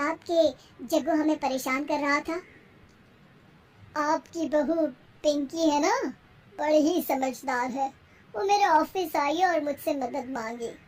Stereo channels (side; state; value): both; identical; correlation 1.00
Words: कि जग्गू हमें परेशान कर रहा था? आपकी बहू पिंकी है ना, बड़ी ही समझदार है, वो मेरे ऑफिस आई और मुझसे मदद मांगी।